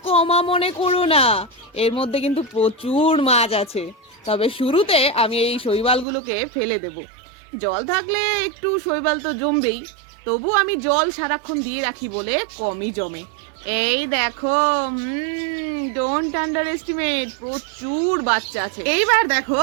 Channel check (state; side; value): drops out; left; at 6.1 s